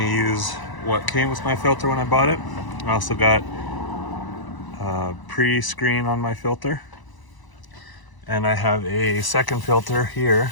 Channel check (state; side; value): late; right; 1.0 ms